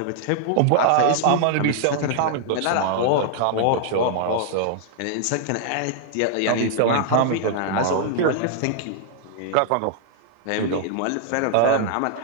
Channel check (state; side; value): different; both; correlation -0.01